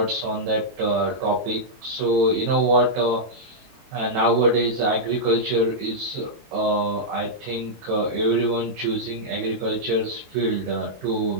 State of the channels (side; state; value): left; late; 22 ms